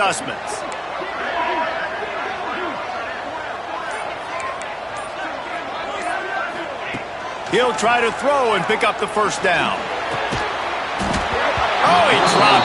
He'll try to throw and pick up the first down. Oh, he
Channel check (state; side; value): identical; both; correlation 1.00